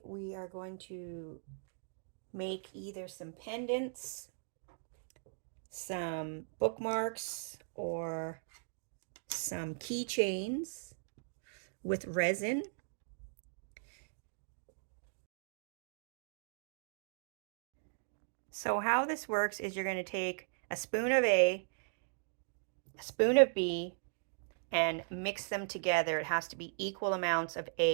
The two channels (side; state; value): left; silent; digital silence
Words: we are going to make either some pendants, some bookmarks, or some keychains with resin. So how this works is you're going to take a spoon of A, a spoon of B, and mix them together. It has to be equal amounts of